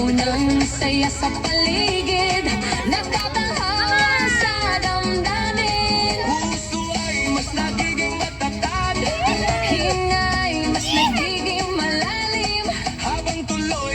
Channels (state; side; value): identical; both; correlation 1.00